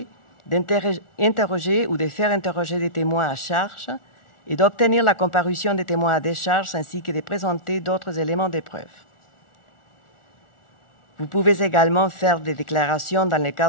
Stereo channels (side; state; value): right; late; 1.4 ms